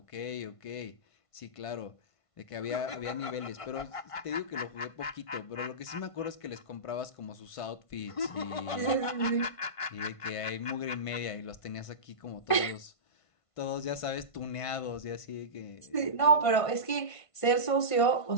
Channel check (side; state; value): right; late; 1.5 ms